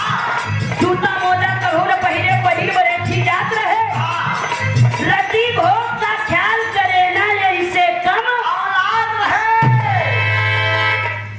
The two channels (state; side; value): identical; both; correlation 1.00